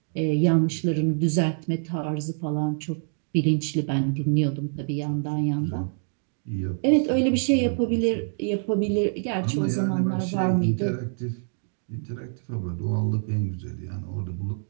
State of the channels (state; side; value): silent; left; 59 dB below the other